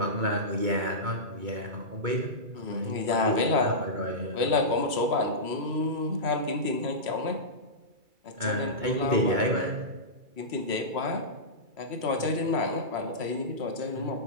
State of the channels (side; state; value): left; late; 2.3 ms